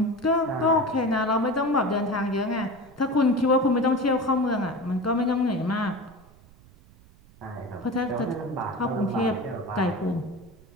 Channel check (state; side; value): noise; right; rumble, 25 dB below the sound